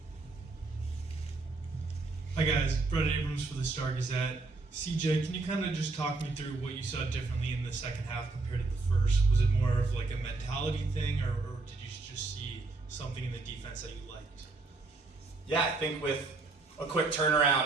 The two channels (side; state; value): left; quieter; 3.6 dB